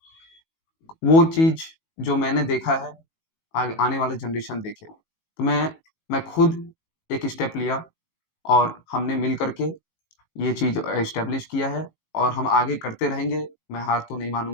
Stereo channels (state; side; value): late; right; 18 ms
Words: वो चीज़ जो मैंने देखा है, आगे आने वाला जनरेशन देखे। तो मैं खुद एक स्टेप लिया और हमने मिल कर के ये चीज़ एस्टेब्लिश किया है और हम आगे करते रहेंगे। मैं हार तो नहीं